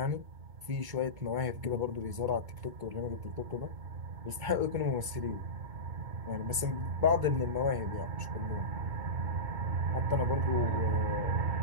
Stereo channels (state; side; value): late; left; 2.2 ms